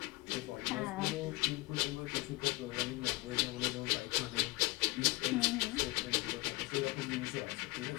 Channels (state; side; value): quieter; right; 22.3 dB